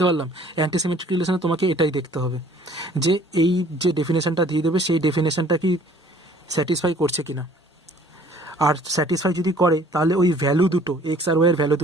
পারলাম? অ্যান্টিসিমেট্রিক রিলেশনে তোমাকে এটাই দেখতে হবে যে এই যে ডেফিনেশনটা দিয়ে দেবে সেই ডেফিনেশনটা কি স্যাটিসফাই করছে কিনা, আর স্যাটিসফাই যদি করে তাহলে ওই ভ্যালু দুটো এক্স আর ওয়াই এর ভ্যালু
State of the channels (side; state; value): both; normal; correlation 0.55